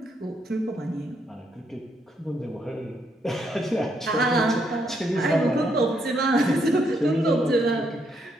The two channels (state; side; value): normal; both; correlation 0.76